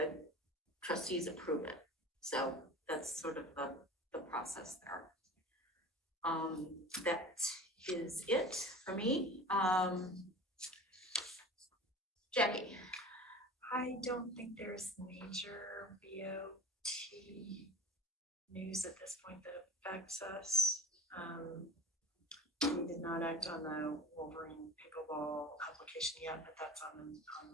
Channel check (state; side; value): normal; both; correlation 0.37